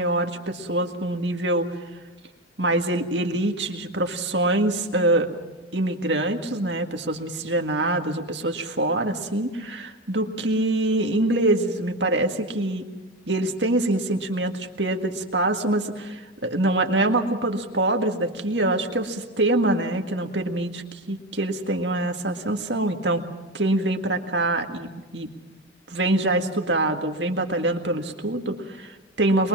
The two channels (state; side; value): normal; both; correlation 0.18